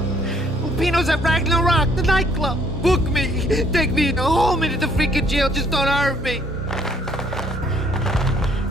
Lupino's at Ragnarok, the nightclub. Book me. Take me home into the freaking jail, just don't hurt me.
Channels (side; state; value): both; normal; correlation 0.64